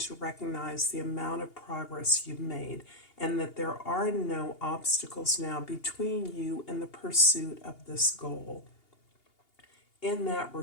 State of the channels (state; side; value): late; right; 2.8 ms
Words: recognize the amount of progress you've made, and that there are no obstacles now between you and the pursuit of this goal. In that